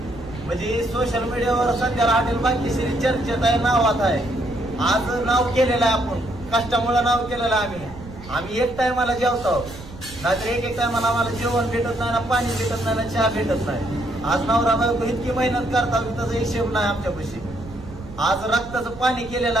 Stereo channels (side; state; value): right; noise; rumble, 15 dB below the sound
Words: म्हणजे सोशल मीडियावर सध्याला हॉटेल भाग्यश्री चर्चेत आहे, नावात आहे, आज नाव केलेलं आहे, आपण कष्टामुळे नाव केलेलं आहे। आम्ही एक टायमाला जेवतो, नाहीतर एक टायमाला आम्हाला जेवण भेटत नाही, ना पाणी भेटत नाही, ना चहा भेटत नाही। आज नवरा बायको इतकी मेहनत करतात त्याचा हिशेब नाही आमच्यापाशी। आज रक्ताचं पाणी केलेलं